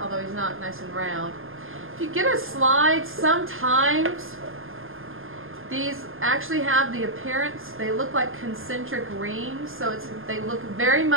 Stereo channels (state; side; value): late; left; 0.60 ms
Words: he's not nice and round. If you get a slide, sometimes these actually have the appearance, they look like concentric rings, so they look very